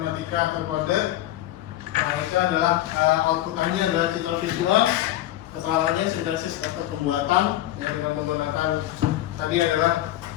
atau kode. Nah, itu adalah outputannya adalah citra visual, keterangannya sintesis atau pembuatan yang dengan menggunakan tadi adalah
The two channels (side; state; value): right; quieter; 14.2 dB